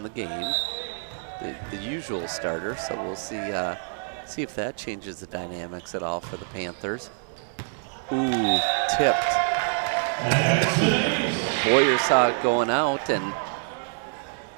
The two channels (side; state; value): left; silent; digital silence